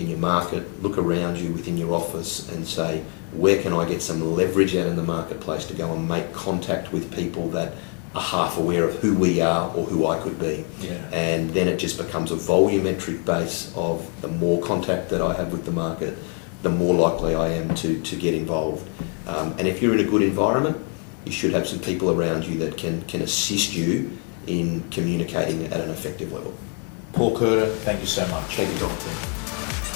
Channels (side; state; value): right; quieter; 35.2 dB